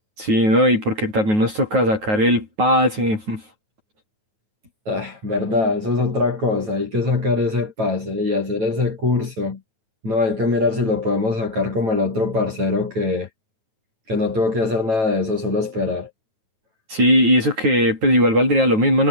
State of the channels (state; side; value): late; left; 9.4 ms